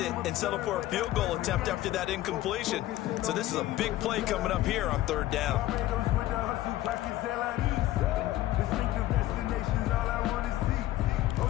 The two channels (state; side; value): quieter; right; 15.2 dB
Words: and settle for a field goal attempt after that incompletion. So this is a big play coming up here on 3rd down.